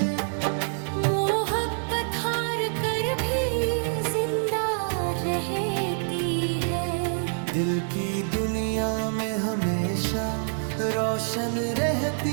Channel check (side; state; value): left; silent; digital silence